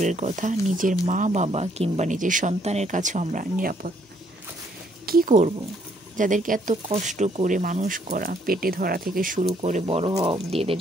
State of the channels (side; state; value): both; normal; correlation 0.68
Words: কথা, নিজের মা বাবা কিংবা নিজের সন্তানের কাছেও আমরা নিরাপদ না। কী করব? যাদেরকে এত কষ্ট করে মানুষ করা, পেটে ধরা থেকে শুরু করে বড় হওয়া অবধি এদের